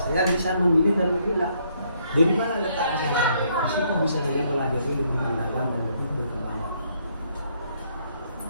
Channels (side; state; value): both; inverted; correlation -0.70